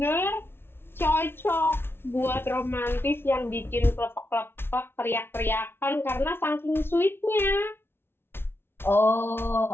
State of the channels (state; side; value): late; right; 0.11 ms